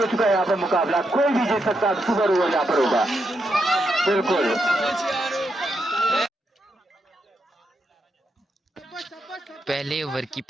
चुका है यहाँ पर मुकाबला, कोई भी जीत सकता है, सुपर ओवर यहाँ पर होगा बिल्कुल। पहले ओवर की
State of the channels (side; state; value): both; normal; correlation 0.83